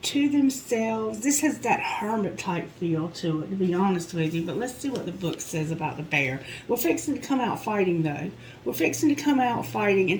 to themselves. This has that hermit type feel to it, to be honest with you. But let's see what the book says about the bear. We're fixing to come out fighting, though. We're fixing to come out fighting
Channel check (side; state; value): both; identical; correlation 1.00